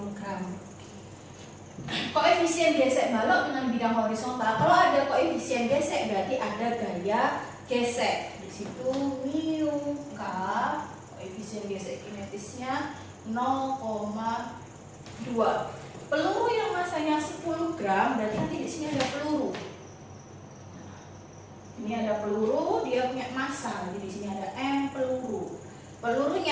Koefisien gesek balok dengan bidang horizontal. Kalau ada koefisien gesek berarti ada gaya gesek. Di situ mu k, koefisien gesek kinetisnya 0,2. Peluru yang masanya 10 gram berarti nanti di sini ada peluru. Ini ada peluru, dia punya massa. Jadi di sini ada M peluru.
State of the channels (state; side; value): identical; both; correlation 1.00